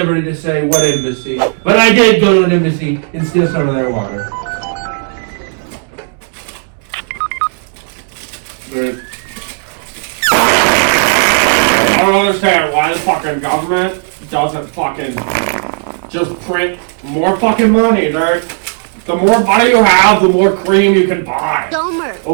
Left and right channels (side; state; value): left; silent; 58 dB below the other